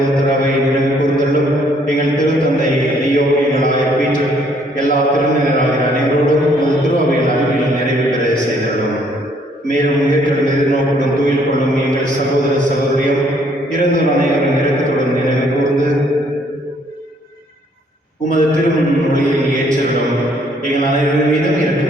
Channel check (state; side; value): normal; both; correlation 0.65